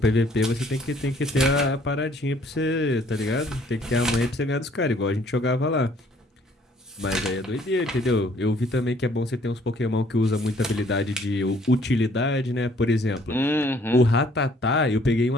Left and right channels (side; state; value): both; normal; correlation 0.61